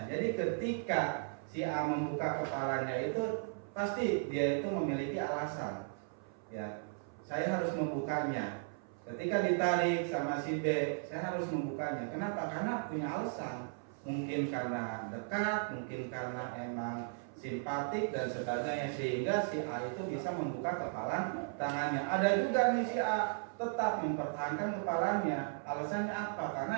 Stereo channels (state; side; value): silent; left; 54 dB below the other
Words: Jadi ketika si A membuka kepalanya itu pasti dia itu memiliki alasan. Ya, saya harus membukanya. Ketika ditarik sama si B, saya harus membukanya. Kenapa? Karena punya alasan. Mungkin karena dekat, mungkin karena emang simpatik dan sebagainya, sehingga si A itu bisa membuka kepalan tangannya. Ada juga nih si A tetap mempertahankan kepalanya. Alasannya apa?